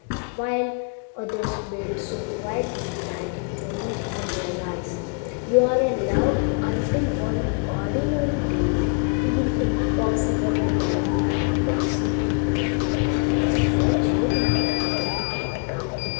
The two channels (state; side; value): quieter; right; 38.3 dB